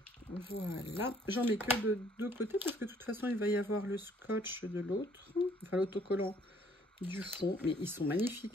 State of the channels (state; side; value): normal; both; correlation 0.62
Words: Voilà, j'en mets que de deux côtés parce que de toute façon il va y avoir le scotch de l'autre, enfin l'autocollant du fond, mais ils sont